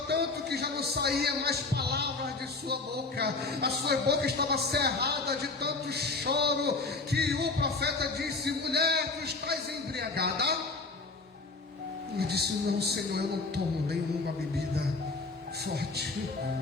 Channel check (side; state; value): right; quieter; 3.7 dB